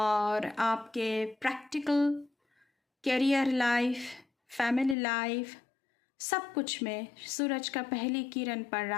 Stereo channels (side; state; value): right; drops out; at 5.0 s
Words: आपके practical career life, family life, सब कुछ में सूरज का पहली किरण पड़